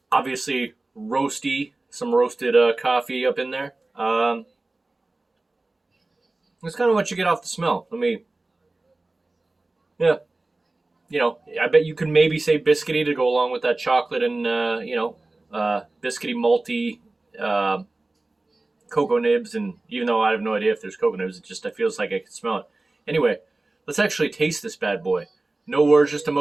obviously, roasty. Some roasted coffee up in there. That's kind of what you get off the smell. I bet you could maybe say biscuity to go along with that chocolate and, biscuity, malty, cocoa nibs. And even though I have no idea if there's cocoa nibs, it feels like I can smell it. Anyway, let's actually taste this bad boy. No words, just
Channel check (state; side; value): quieter; left; 3.0 dB